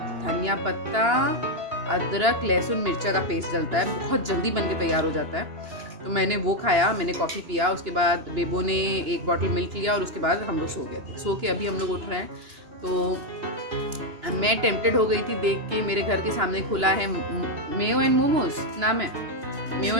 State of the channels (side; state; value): left; late; 2.9 ms